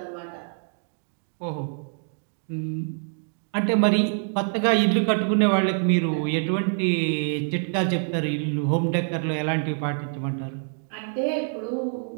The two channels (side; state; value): left; silent; 61 dB below the other